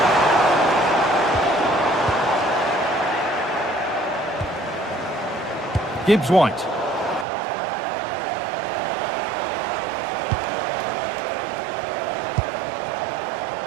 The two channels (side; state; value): left; drops out; at 7.2 s